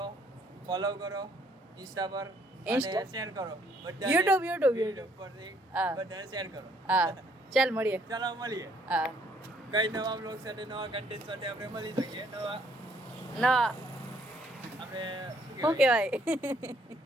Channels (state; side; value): normal; both; correlation 0.66